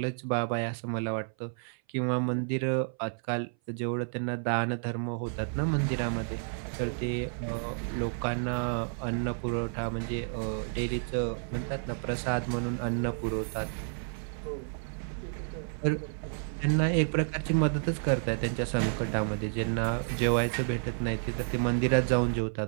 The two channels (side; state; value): left; silent; 57 dB below the other